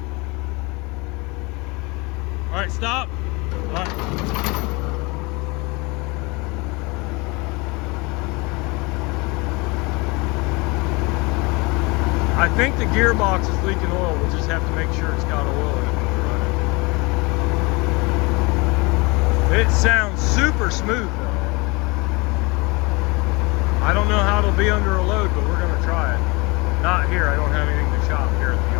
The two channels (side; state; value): right; quieter; 26.5 dB